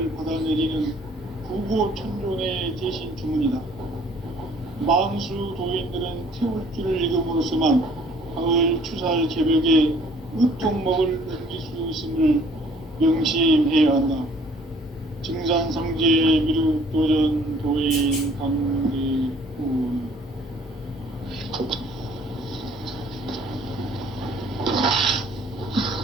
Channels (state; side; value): normal; both; correlation 0.57